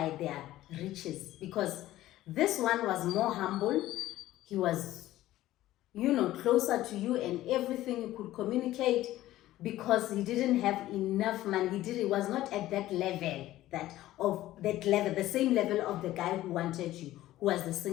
their riches, because this one was more humble. He was, you know, closer to you, and everything you could communicate, because he didn't have enough money. He was not at that level, the same level of the guy who wanted you, who was the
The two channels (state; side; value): quieter; right; 15.1 dB